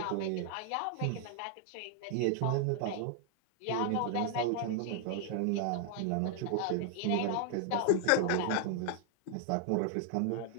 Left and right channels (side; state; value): both; different; correlation 0.00